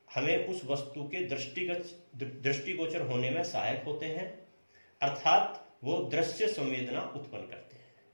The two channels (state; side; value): inverted; both; correlation -1.00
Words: हमें उस वस्तु के दृष्टिगोचर होने में सहायक होते हैं, अर्थात वो दृश्य संवेदना उत्पन्न करते हैं।